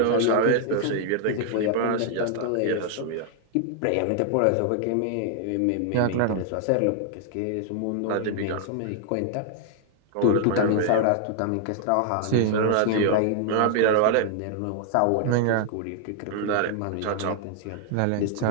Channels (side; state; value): both; different; correlation 0.00